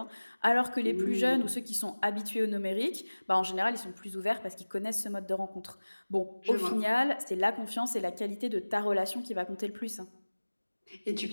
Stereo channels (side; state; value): both; inverted; correlation -1.00